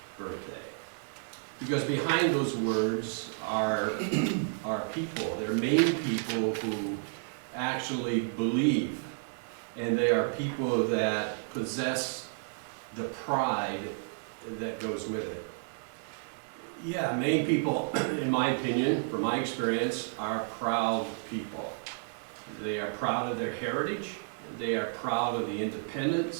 birthday. Because behind those words are people. They're Maine people who actually believe, and they are people that possess the pride that goes with it. Yeah, Maine people, in my opinion, from my experience, are proud people. They are proud of their heritage. They are proud of the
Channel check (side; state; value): left; silent; digital silence